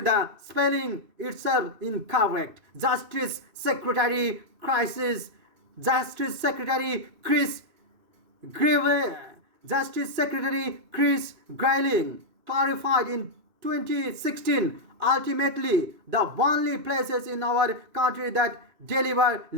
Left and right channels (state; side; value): late; left; 2.6 ms